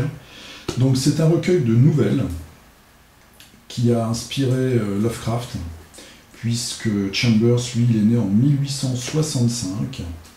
Donc c'est un recueil de nouvelles qui a inspiré Lovecraft, puisque Chambers, lui, il est né en 1865.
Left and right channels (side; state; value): both; identical; correlation 1.00